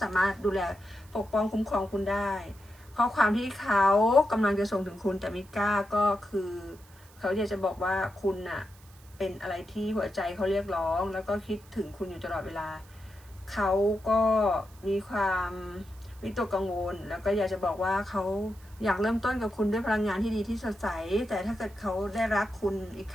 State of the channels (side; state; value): right; noise; hiss, 26 dB below the sound